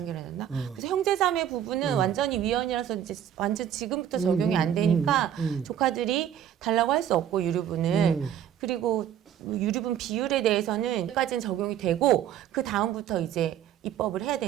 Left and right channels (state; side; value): quieter; left; 10.1 dB